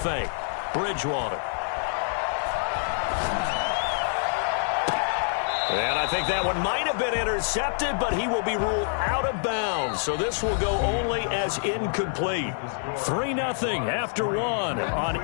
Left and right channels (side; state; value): right; silent; digital silence